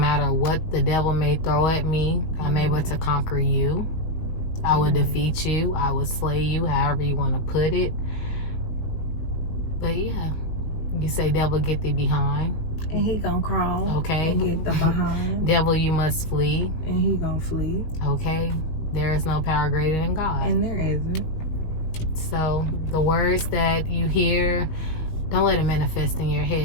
what the devil may throw at me, I'm able to conquer you. I will defeat you. I will slay you, however you want to put it. But yeah, you say, devil, get thee behind. And he gonna crawl. Okay. And get the behind. Devil, you must flee. And he gonna flee. Okay. There is no power greater than God. And there isn't. So the words that you hear, don't let it manifest in your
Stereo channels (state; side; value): late; right; 19 ms